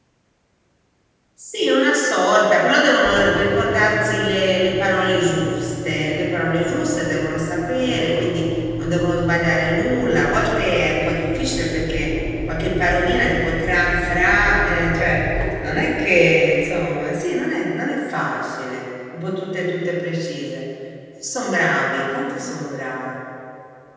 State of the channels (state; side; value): identical; both; correlation 1.00